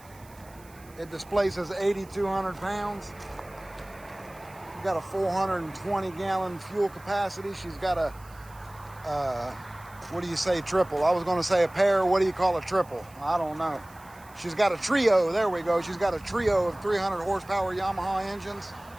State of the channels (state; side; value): noise; right; hiss, 25 dB below the sound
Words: It displaces 8,200 pounds. Got a 420-gallon fuel capacity. She's got a, what do you say, triple? I was going to say a pair. What do you call a triple? I don't know. She's got a trio. There we go. She's got a trio of 300 horsepower Yamaha engines.